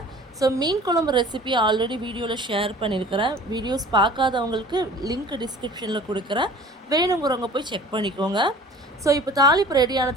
ஸோ மீன் குழம்பு ரெசிபி ஆல்ரெடி வீடியோவில் ஷேர் பண்ணியிருக்கிறேன். வீடியோஸ் பார்க்காதவங்களுக்கு லிங்க் டிஸ்கிரிப்ஷனில் கொடுக்குறேன், வேணுங்கிறவங்க போய் செக் பண்ணிக்கோங்க. ஸோ இப்போ தாளிப்பு ரெடி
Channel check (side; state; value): both; normal; correlation 0.45